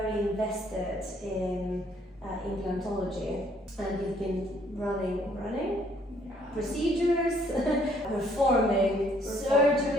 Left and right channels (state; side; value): normal; both; correlation 0.65